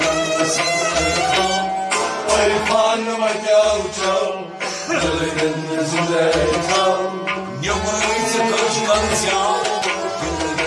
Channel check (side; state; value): both; identical; correlation 1.00